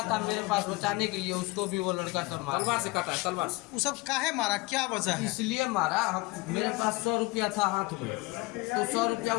था मेरे पास, बचाने के लिए उसको भी वो लड़का तलवार से काटा है, तलवार से। वो सब काहे मारा, क्या वजह है? इसलिए मारा, मेरे पास 100 रुपया था हाथ में, तो 100 रुपया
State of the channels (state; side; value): quieter; right; 23.5 dB